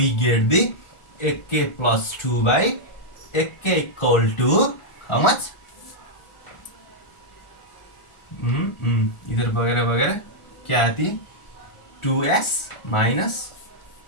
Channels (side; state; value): right; late; 1.4 ms